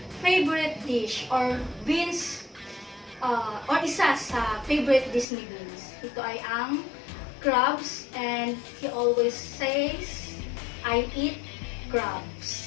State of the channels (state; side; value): drops out; right; at 5.2 s